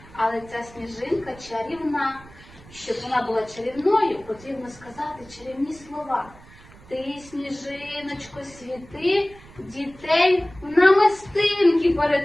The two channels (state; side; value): noise; right; rumble, 22 dB below the sound